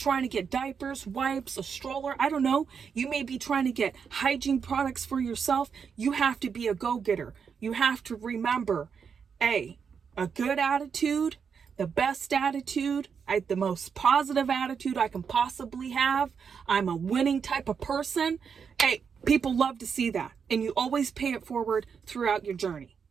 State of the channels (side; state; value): left; quieter; 6.5 dB